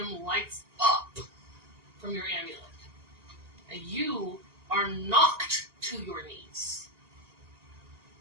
lights up from your amulet. And you are knocked to your knees.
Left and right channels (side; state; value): left; late; 1.9 ms